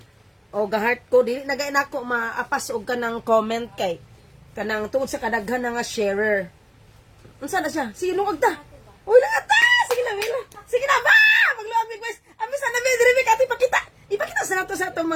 Ga-heart ko dili nagay nako maapas og kanang comment kay kanang tungod sa kadaghan nga sharer. Unsa na siya? Sige lungag ta. Uy, lungag ta. Sige na ba? Magluamig guys. Ami sa nabi diri ati pakita. Ipakita sa nato sa atong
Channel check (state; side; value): identical; both; correlation 1.00